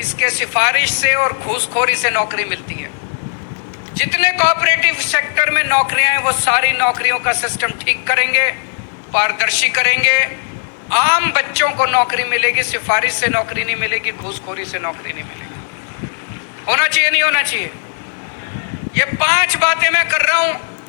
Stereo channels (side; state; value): right; silent; digital silence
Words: सिफारिश से और घूसखोरी से नौकरी मिलती है। जितने कोऑपरेटिव सेक्टर में नौकरियां हैं वो सारी नौकरियों का सिस्टम ठीक करेंगे, पारदर्शी करेंगे। आम बच्चों को नौकरी मिलेगी, सिफारिश से नौकरी नहीं मिलेगी, घूसखोरी से नौकरी नहीं मिलेगी। होना चाहिए नहीं होना चाहिए? ये 5 बातें मैं कर रहा हूं।